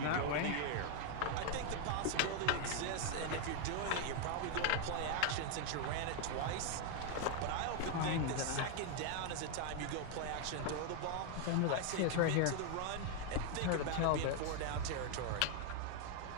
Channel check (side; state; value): both; different; correlation 0.00